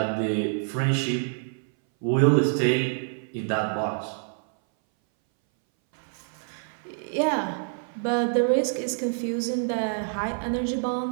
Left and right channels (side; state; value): left; silent; 59 dB below the other